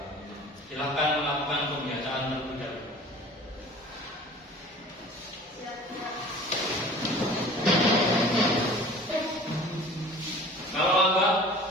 Silakan melakukan pembacaan terlebih dahulu. Kalau lambat,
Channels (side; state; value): both; normal; correlation 0.44